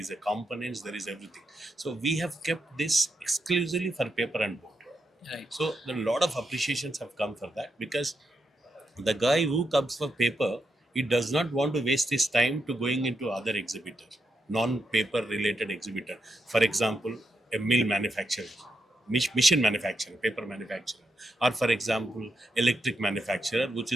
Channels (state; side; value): normal; both; correlation 0.83